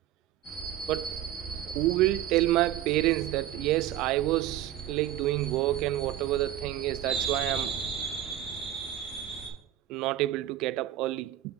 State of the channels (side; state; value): left; quieter; 12.3 dB